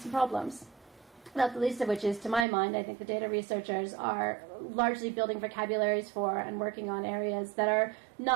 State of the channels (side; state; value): left; drops out; at 2.5 s